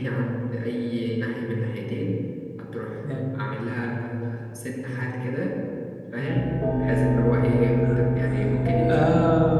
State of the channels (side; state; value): both; identical; correlation 1.00